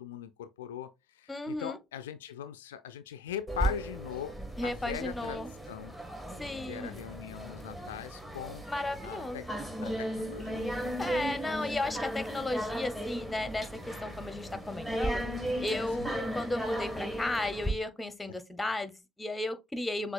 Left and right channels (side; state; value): both; normal; correlation 0.78